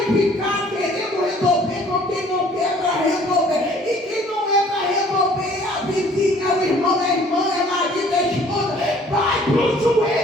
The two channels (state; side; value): normal; both; correlation 0.55